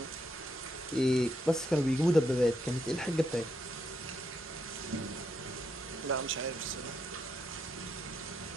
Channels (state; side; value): normal; both; correlation 0.79